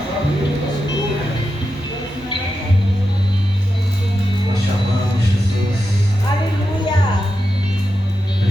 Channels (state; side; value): normal; both; correlation 0.89